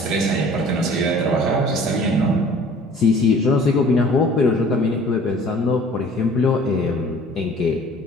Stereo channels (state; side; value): normal; both; correlation 0.50